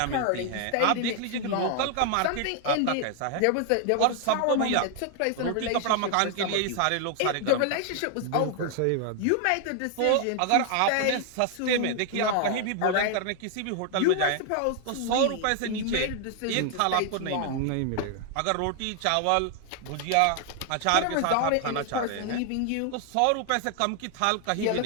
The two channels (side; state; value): both; different; correlation 0.00